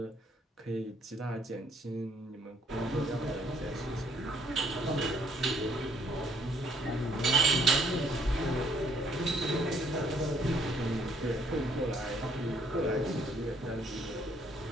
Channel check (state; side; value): normal; both; correlation 0.65